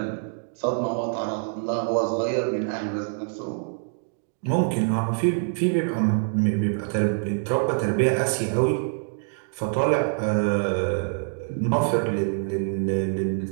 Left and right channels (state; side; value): silent; left; digital silence